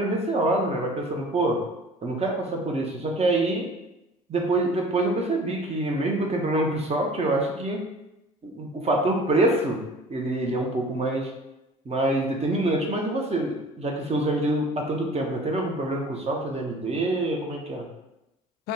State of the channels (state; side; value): normal; both; correlation 0.46